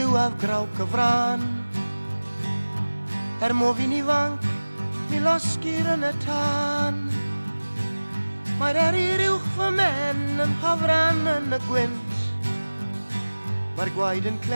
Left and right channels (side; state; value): both; inverted; correlation -1.00